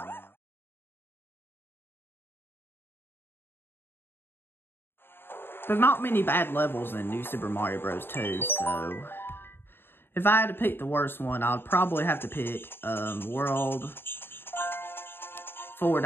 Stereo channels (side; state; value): right; late; 0.11 ms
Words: now. There's not many bad levels in New Super Mario Bros. 2, so if I had to pick the worst one, I'd probably have to pick World